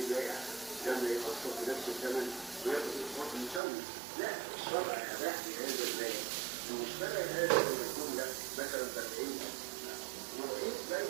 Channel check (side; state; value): left; drops out; at 3.6 s